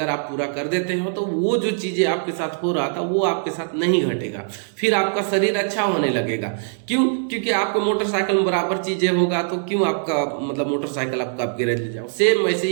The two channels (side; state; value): left; silent; digital silence